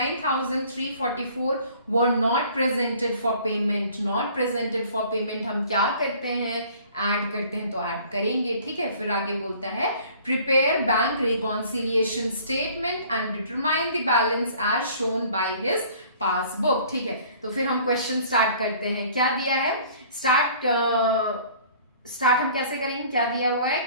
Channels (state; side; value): inverted; both; correlation -0.52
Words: were not presented for payment. Not presented for payment हम क्या करते हैं, add करते हैं, तो add करेंगे, ठीक है। फिर आगे बोलता है prepare bank reconciliation statement and determine the balance as shown by his passbook, ठीक है। तो फिर हम क्वेश्चन स्टार्ट करते हैं। क्या दिया है, स्टार्ट हम कैसे करेंगे, क्या दिया हुआ है,